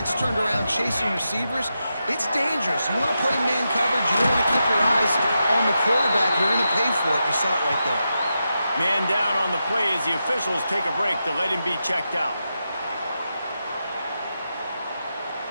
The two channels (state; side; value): inverted; both; correlation -0.88